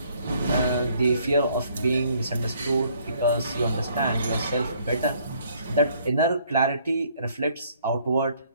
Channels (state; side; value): inverted; both; correlation -0.64